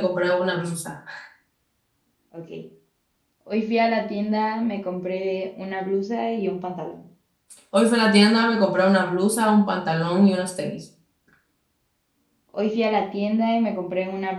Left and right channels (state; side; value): identical; both; correlation 1.00